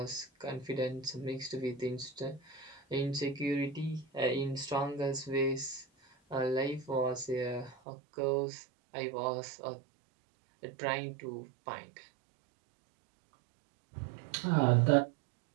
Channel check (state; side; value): drops out; left; at 7.8 s